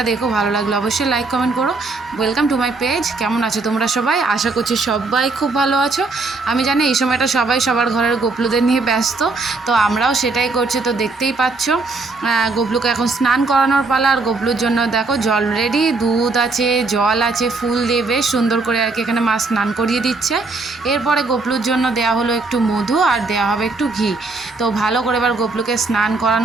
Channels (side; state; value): left; quieter; 3.6 dB